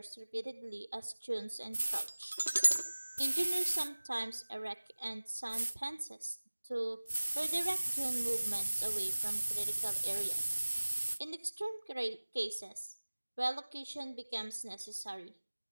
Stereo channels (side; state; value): both; inverted; correlation -1.00